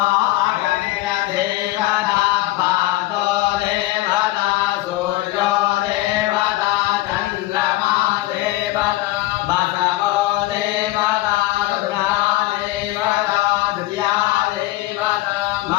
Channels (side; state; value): right; quieter; 17.4 dB